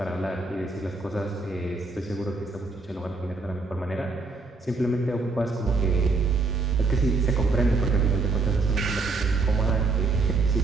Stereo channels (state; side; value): quieter; left; 3.7 dB